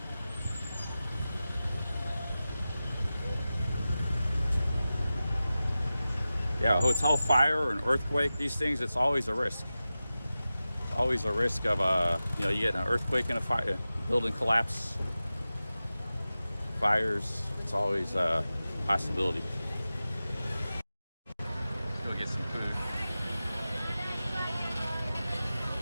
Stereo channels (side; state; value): both; inverted; correlation -0.95